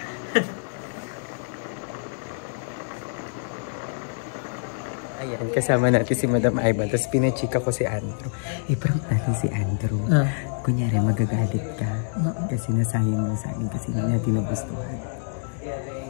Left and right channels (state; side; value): silent; right; digital silence